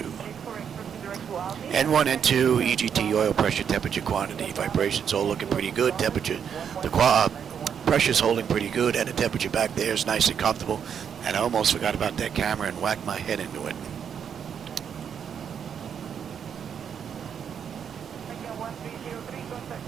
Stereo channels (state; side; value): quieter; left; 7.8 dB